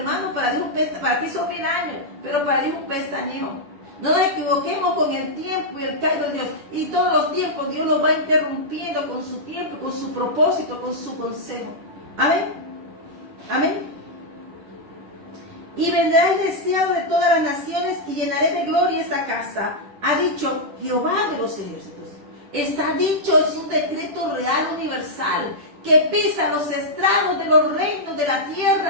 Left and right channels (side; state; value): left; late; 10 ms